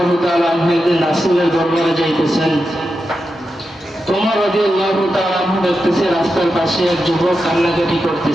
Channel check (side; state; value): both; normal; correlation 0.89